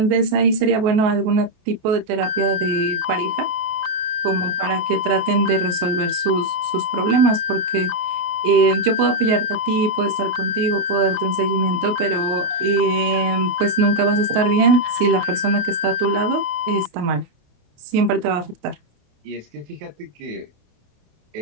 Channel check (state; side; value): late; left; 28 ms